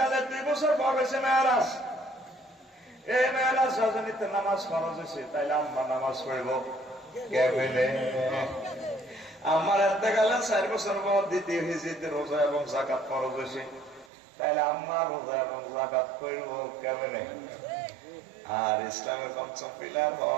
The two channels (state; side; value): drops out; left; at 14.1 s